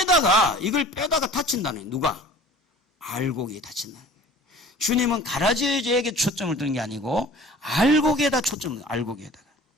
다친다는 거예요. 누가? 알곡이 다친다는 거예요. 주님은 가라지에게 초점을 두는 게 아니고 알곡에다 초점을 둬요. 알곡에다가.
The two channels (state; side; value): normal; both; correlation 0.45